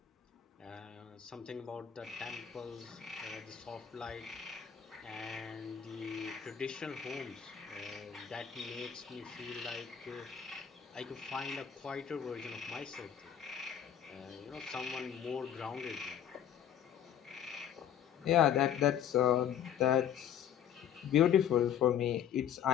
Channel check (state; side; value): quieter; right; 9.3 dB